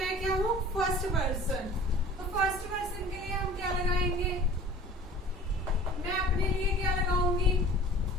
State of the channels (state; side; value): normal; both; correlation 0.44